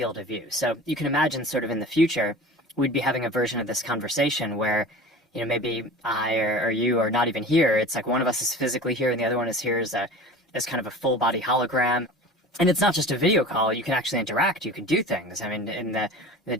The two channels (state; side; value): normal; both; correlation 0.37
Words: of view. So you can imagine sort of in the future, we'd be having a version of this conversation where, you know, maybe I or you are not even here. It's like one of us is physically here and the other one is here as kind of a full body hologram. And it's not just a video call. You can actually interact. You can do things. I mean, in the